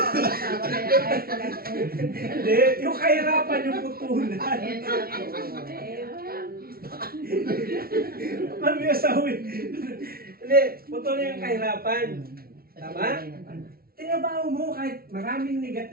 asawa kaya kahit wala ko. Hindi, yung kahirapan yung putulan. Ayan na ako. Ano yung asawa? Hindi, putulin yung kahirapan. Tama? Tinabaho mo kahit maraming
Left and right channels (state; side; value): late; left; 0.44 ms